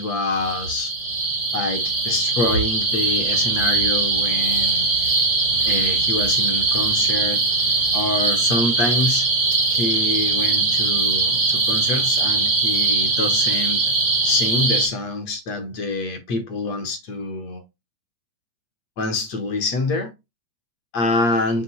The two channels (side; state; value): right; late; 8.5 ms